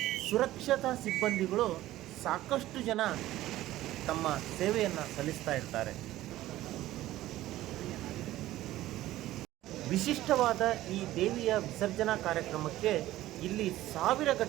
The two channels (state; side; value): quieter; left; 15.3 dB